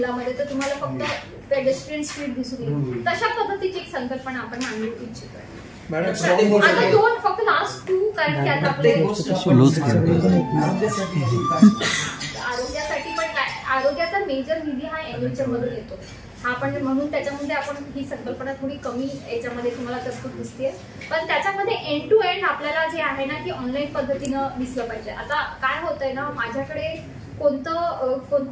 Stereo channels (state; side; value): identical; both; correlation 1.00